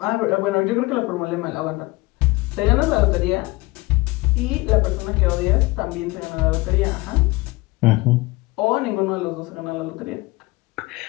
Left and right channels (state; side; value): quieter; right; 22.3 dB